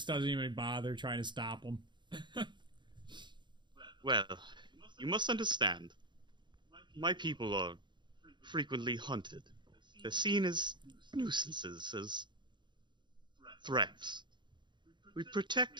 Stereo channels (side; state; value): left; late; 0.22 ms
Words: doesn't even bother trying to stop him. Well, you must understand. My people are frequently hunted. They're seen as nuisances, as threats. We